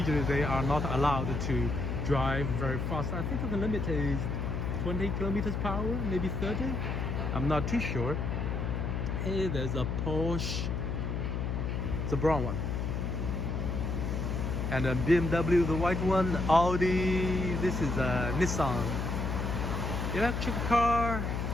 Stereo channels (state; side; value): noise; left; hum, 1 dB below the sound